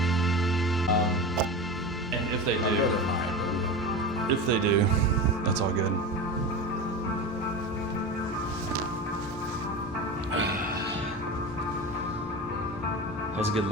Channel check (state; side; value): normal; both; correlation 0.26